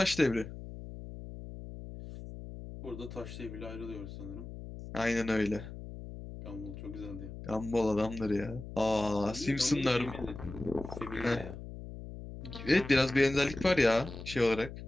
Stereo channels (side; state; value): left; noise; hum, 11 dB below the sound